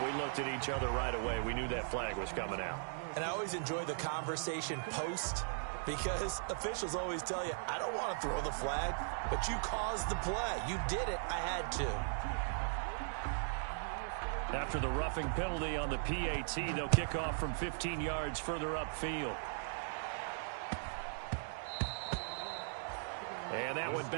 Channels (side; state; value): left; silent; digital silence